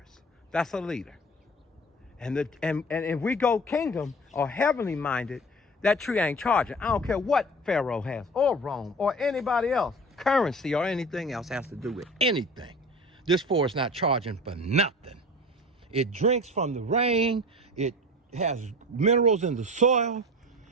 That's a leader. And if we go kingdom or heavenly minded, that tree ain't charging. I don't care what Pharaoh has, or Rome, or anybody else. Currency or anything else has to do with anything. This forest not charging for nothing. It drinks from the rain, it has minerals in the soil,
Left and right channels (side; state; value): both; normal; correlation 0.37